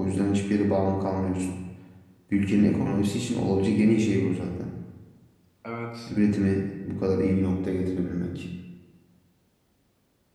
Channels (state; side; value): identical; both; correlation 1.00